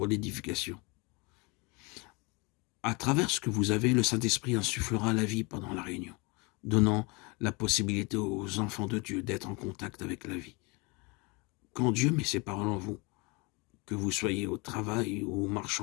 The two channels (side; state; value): right; quieter; 28.2 dB